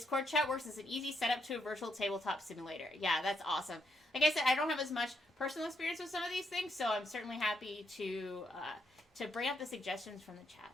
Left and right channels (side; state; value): both; normal; correlation 0.77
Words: chat works as an easy setup to a virtual tabletop simulator. Yeah, that's awesome. Like I said, I don't have as much personal experience with some of these things, so I'm certainly happy to bring up the suggestions from the chat.